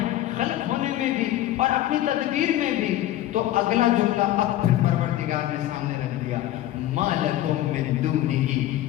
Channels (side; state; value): right; quieter; 13.9 dB